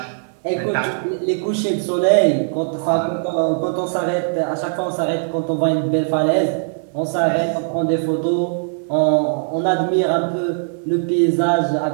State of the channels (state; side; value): silent; left; digital silence